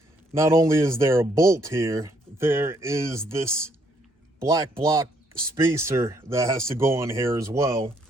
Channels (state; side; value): normal; both; correlation 0.69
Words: not only is there a bolt here, there is this black block spacer that has to go on here as well.